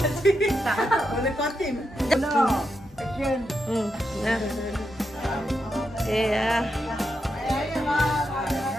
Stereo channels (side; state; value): both; normal; correlation 0.84